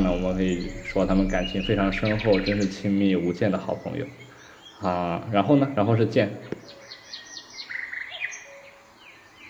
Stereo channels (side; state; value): both; identical; correlation 1.00